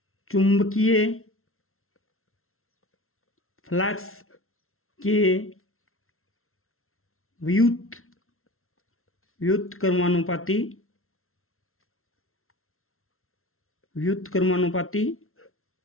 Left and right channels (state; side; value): late; right; 0.62 ms